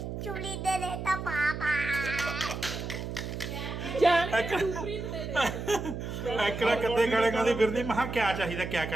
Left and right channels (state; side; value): noise; right; hum, 6 dB below the sound